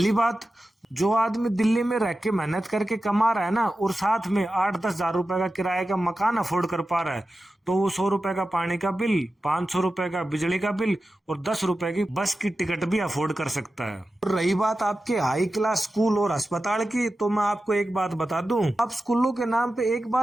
बात, जो आदमी दिल्ली में रह के मेहनत करके कमा रहा है ना, और साथ में 8-10 हजार रुपए का किराए का मकान अफोर्ड कर पा रहा है, तो वो 100 रुपए का पानी का बिल, 500 रुपए का बिजली का बिल और 10 रुपए की बस की टिकट भी अफोर्ड कर सकता है। और रही बात आपके हाई क्लास स्कूल और अस्पताल की, तो मैं आपको एक बात बता दूं। आप स्कूलों के नाम पे एक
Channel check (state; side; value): normal; both; correlation 0.93